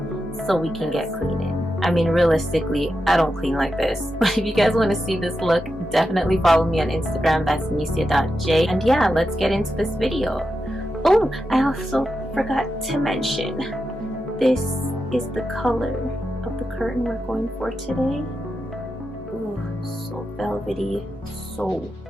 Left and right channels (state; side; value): normal; both; correlation 0.88